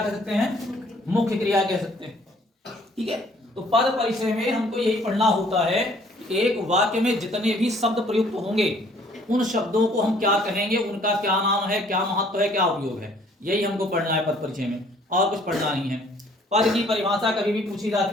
कह सकते हैं, मुख्य क्रिया कह सकते हैं। ठीक है, तो पद परिचय में हमको यही पढ़ना होता है कि एक वाक्य में जितने भी शब्द प्रयुक्त होंगे उन शब्दों को हम क्या कहेंगे, उनका क्या नाम है, क्या महत्व है, क्या उपयोग है, यही हमको पढ़ना है पद परिचय में, और कुछ पढ़ना नहीं है। पद की परिभाषा कभी भी पूछी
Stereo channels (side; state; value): both; normal; correlation 0.59